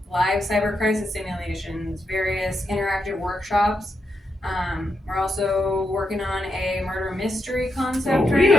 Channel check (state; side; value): normal; both; correlation 0.84